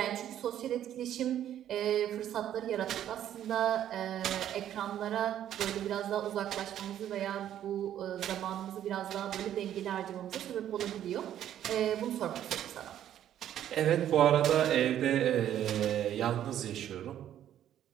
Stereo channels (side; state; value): left; quieter; 11.0 dB